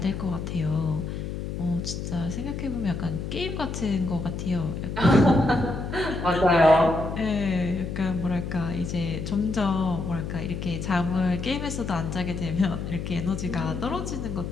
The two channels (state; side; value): noise; left; hum, 5 dB below the sound